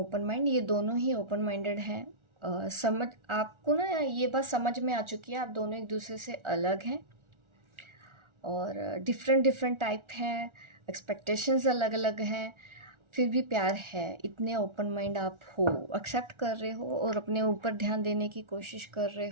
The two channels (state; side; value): late; left; 1.4 ms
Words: mind, ये दोनों ही ओपन माइंडेड हैं। समझ, आपको ना ये बात समझ में आ चुकी है, आप दोनों एक दूसरे से अलग हैं और डिफरेंट टाइप हैं, एक्सपेक्टेशंस अलग अलग हैं, फिर भी प्यार है। इतने ओपन माइंड आप हो, एक्सेप्ट कर रहे हो और अपने ऊपर ध्यान देने की कोशिश कर रहे